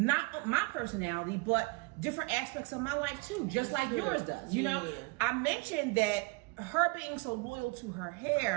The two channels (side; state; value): left; quieter; 26.9 dB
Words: my personality, but different aspects of my life too, just like yours does. You know, I mentioned that her being so loyal to her